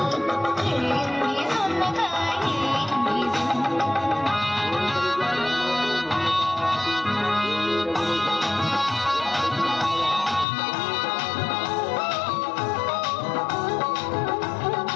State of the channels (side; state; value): right; drops out; at 10.5 s